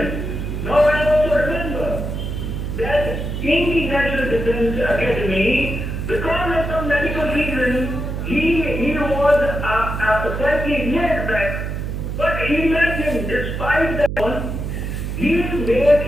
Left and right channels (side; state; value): right; noise; hum, 4 dB below the sound